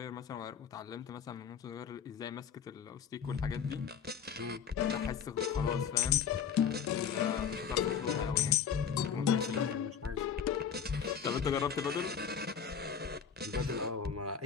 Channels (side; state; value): right; quieter; 7.3 dB